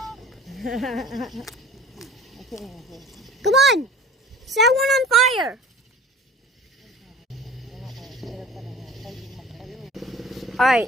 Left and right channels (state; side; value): normal; both; correlation 0.43